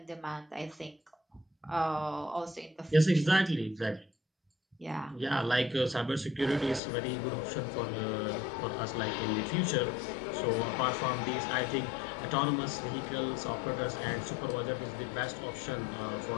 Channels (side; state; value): right; drops out; at 6.8 s